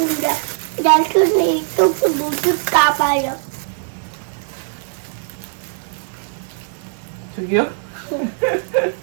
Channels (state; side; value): silent; left; 55 dB below the other